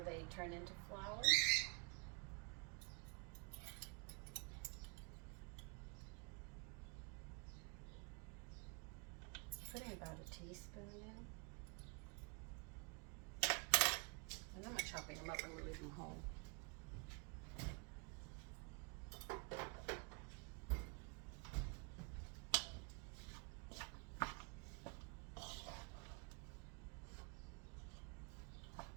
they turn into flowers. Putting about a teaspoon in. And I'm not chopping them up, I'm going to leave them whole.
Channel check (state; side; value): quieter; left; 34.9 dB